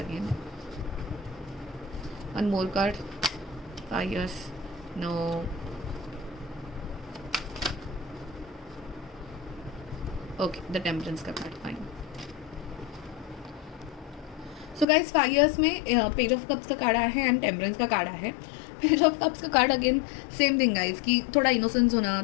again. One more card. 5 years. No. Okay, the temperance का card. Fine. So guys 5 years में page of cups का card आया है and temperance का card आया है. पेज ऑफ कप्स का card again same thing guys, कि थोड़ा इनोसेंस होना,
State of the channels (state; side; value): drops out; right; at 14.9 s